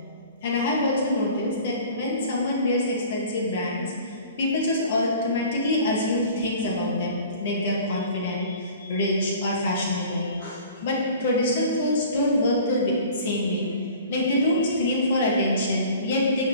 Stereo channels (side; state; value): both; inverted; correlation -0.45